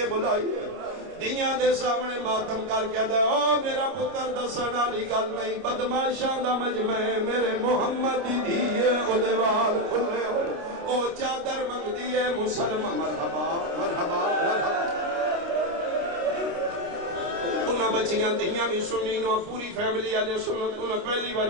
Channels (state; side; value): late; left; 29 ms